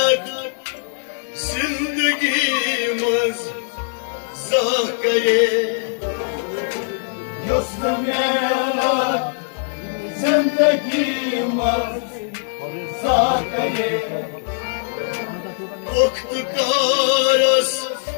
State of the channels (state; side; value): silent; right; 63 dB below the other